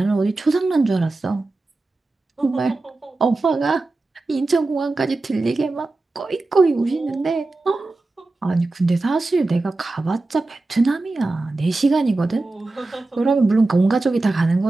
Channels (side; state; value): left; quieter; 3.2 dB